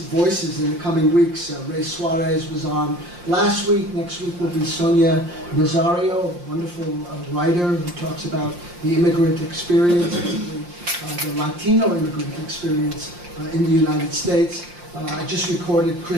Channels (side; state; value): left; late; 5.7 ms